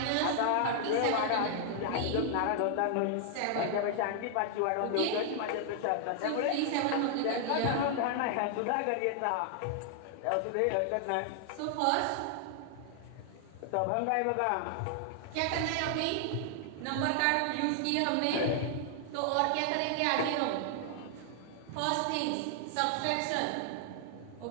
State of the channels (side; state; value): both; different; correlation 0.00